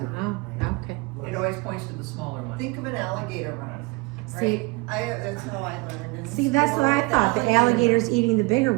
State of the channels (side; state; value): left; quieter; 25.2 dB